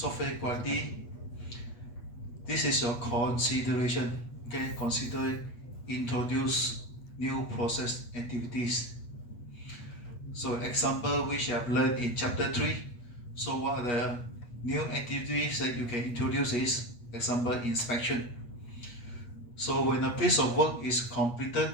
quality, this is your consideration. Okay, consider introduce new process activities. So example which I have learned in chapter 3. So what are the new activities that you can introduce is, example, inspection. So when a piece of work is completed,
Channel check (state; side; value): late; right; 8.3 ms